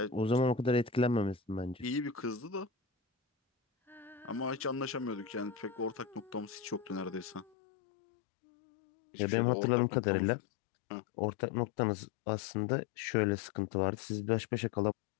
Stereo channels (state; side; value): drops out; right; at 7.5 s